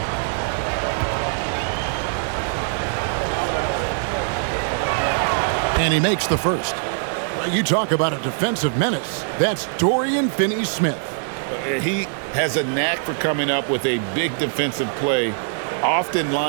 And he makes the first. You talk about a defensive menace. That's Dorian Finney-Smith. He has a knack for coming up with a big defensive play, often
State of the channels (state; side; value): silent; left; 64 dB below the other